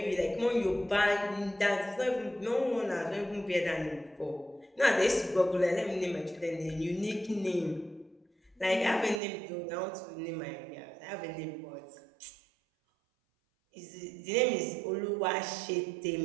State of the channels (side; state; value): left; drops out; at 9.2 s